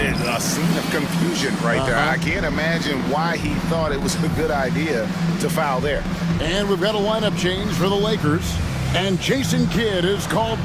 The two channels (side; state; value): both; identical; correlation 1.00